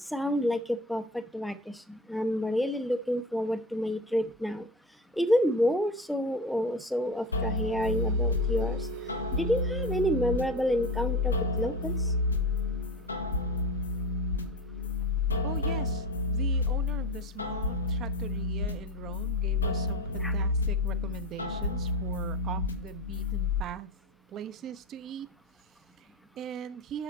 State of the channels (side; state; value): both; normal; correlation 0.29